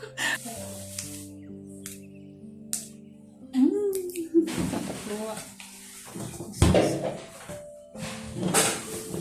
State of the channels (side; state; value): both; identical; correlation 1.00